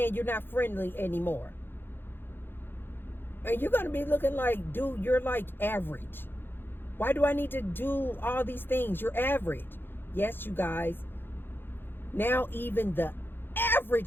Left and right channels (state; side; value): late; right; 0.10 ms